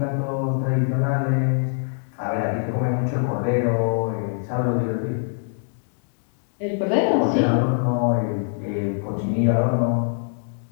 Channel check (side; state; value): right; silent; digital silence